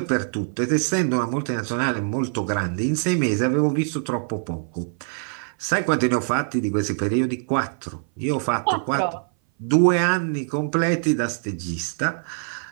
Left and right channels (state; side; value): silent; left; 59 dB below the other